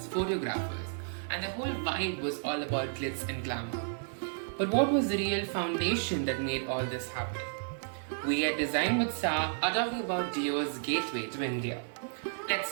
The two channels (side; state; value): left; silent; 56 dB below the other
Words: photographers, and the whole vibe was all about glitz and glamour. But what was the real foundation that made all this happen? We at Design with Sa are talking about Dior's gateway to India.